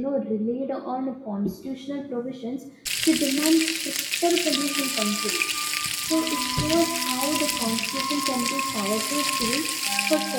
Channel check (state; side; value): identical; both; correlation 1.00